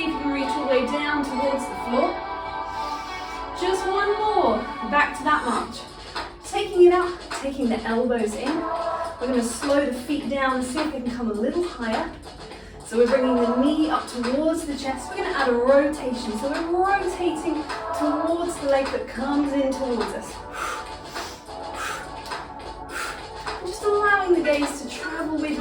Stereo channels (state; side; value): identical; both; correlation 1.00